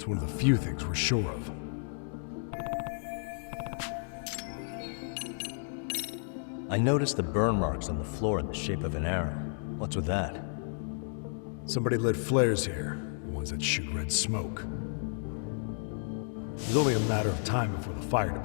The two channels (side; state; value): right; silent; digital silence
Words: one of the few things we're sure of. I noticed the burn marks on the floor in the shape of an arrow. What's with that? Somebody lit flares here, the ones that shoot red smoke. It was only a matter of time before the fire